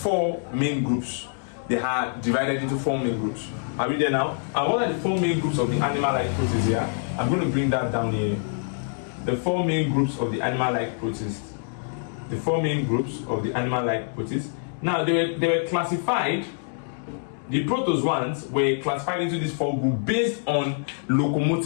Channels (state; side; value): silent; right; digital silence